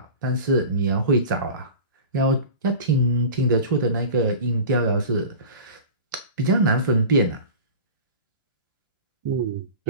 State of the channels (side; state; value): both; inverted; correlation -0.35